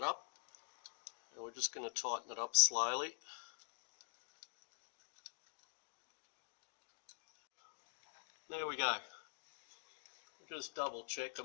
up, and we're just going to tighten it up slowly. There we go. Just double check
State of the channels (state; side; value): silent; right; digital silence